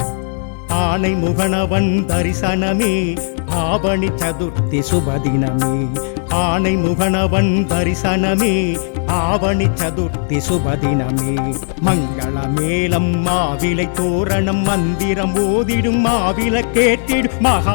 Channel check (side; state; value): right; silent; 61 dB below the other